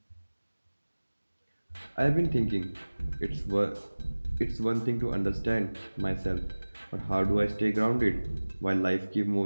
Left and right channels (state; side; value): inverted; both; correlation -1.00